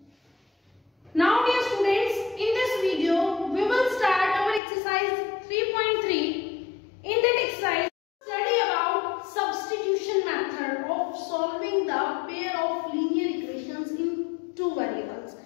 Now dear students, in this video we will start our exercise 3.3. In that exercise, study about substitution method of solving the pair of linear equations in two variables.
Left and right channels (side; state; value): right; drops out; at 4.6 s